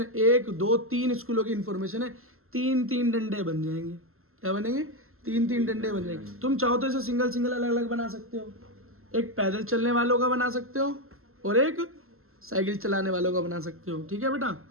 1, 2, 3 स्कूलों की इंफॉर्मेशन है। 3 डंडे बन जाएंगे। क्या बनेंगे? 3 डंडे बन जाएंगे। तुम चाहो तो इसे सिंगल अलग अलग बना सकते हो। एक पैदल चलने वालों का बना सकते हो और एक साइकिल चलाने वालों का बना सकते हो, ठीक है बेटा।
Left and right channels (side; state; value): left; late; 0.62 ms